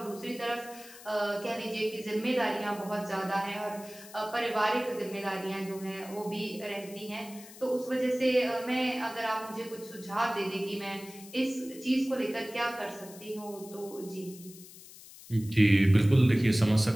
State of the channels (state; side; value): noise; left; hiss, 18 dB below the sound